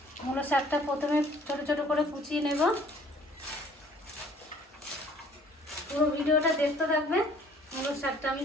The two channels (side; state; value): both; normal; correlation 0.56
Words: মূলো শাকটা প্রথমে ছোট ছোট করে কুচিয়ে নেব। পুরো ভিডিওটা দেখতে থাকবে। মূলো শাকটা আমি